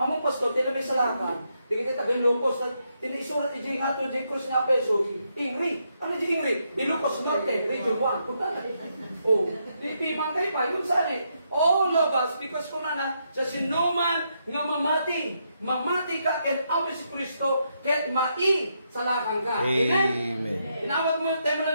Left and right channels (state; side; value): inverted; both; correlation -0.79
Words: pastor, tinabay sa lakan, di kita tagay lupos, tinisurat iji nga to, di krus nga peso, ingri. Ano di ingri? Ilupos Norte, Region 1. Punta na. Oh, di mangkay pa, yun saan eh. All of us, because kung na, sa sinuman nga mamati ka, ken awi si Kristo, ken mai sa lakan ka. Amen? Inawag mo yung tema